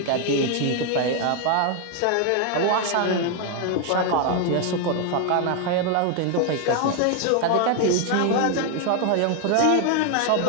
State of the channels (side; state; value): both; different; correlation 0.01